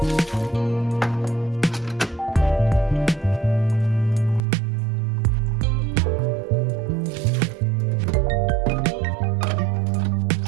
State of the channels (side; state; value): left; drops out; at 4.4 s